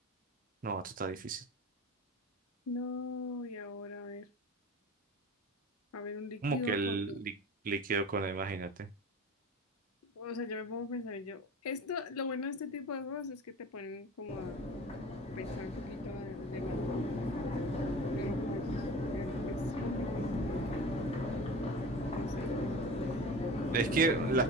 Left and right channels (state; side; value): normal; both; correlation 0.36